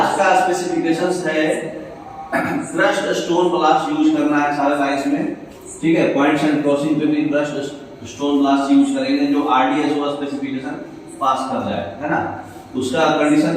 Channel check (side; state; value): both; identical; correlation 1.00